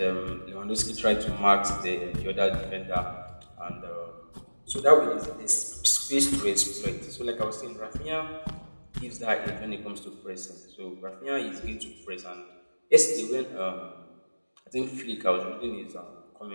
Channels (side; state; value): both; inverted; correlation -1.00